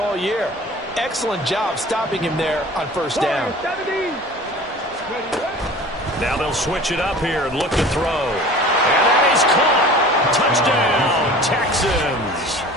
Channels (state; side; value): normal; both; correlation 0.42